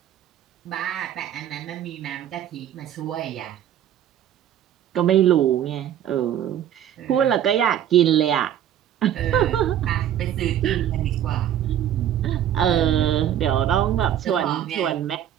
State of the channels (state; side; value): quieter; left; 10.6 dB